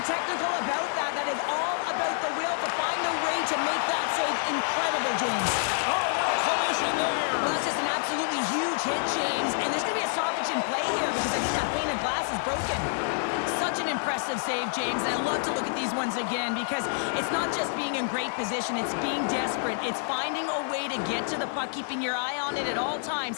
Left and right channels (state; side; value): silent; right; 59 dB below the other